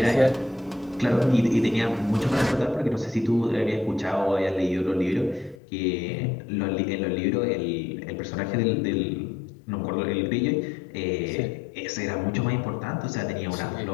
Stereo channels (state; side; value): drops out; right; at 5.6 s